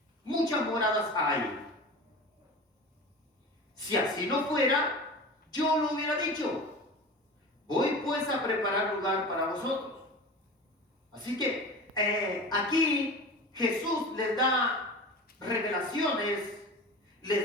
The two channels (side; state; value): both; normal; correlation 0.33